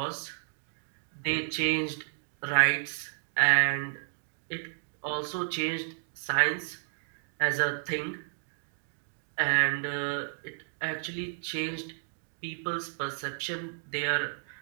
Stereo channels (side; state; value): left; silent; digital silence